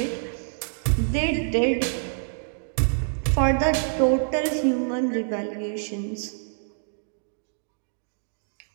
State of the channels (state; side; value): silent; left; 61 dB below the other